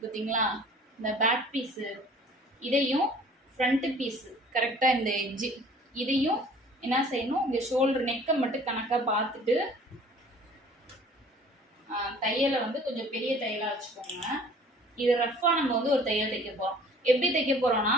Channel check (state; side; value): normal; both; correlation 0.50